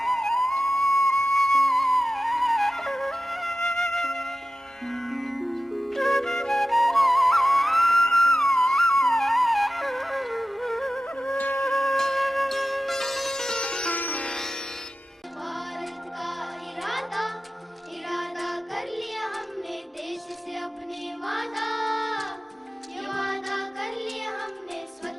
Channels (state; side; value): normal; both; correlation 0.94